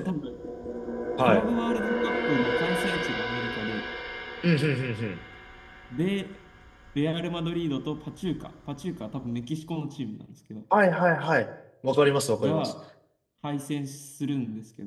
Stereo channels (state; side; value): identical; both; correlation 1.00